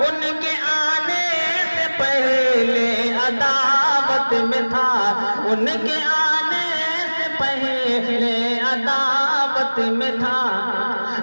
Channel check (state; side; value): inverted; both; correlation -1.00